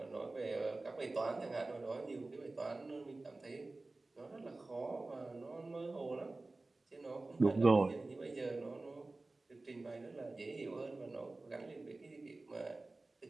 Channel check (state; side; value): quieter; left; 3.2 dB